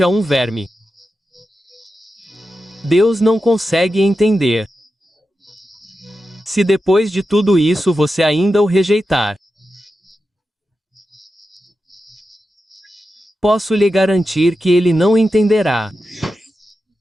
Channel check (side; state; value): both; normal; correlation 0.91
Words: a um verme. Deus não consegue entender. Se depois de tudo isso você ainda o rejeitar, posso lhe garantir que ele não entenderá.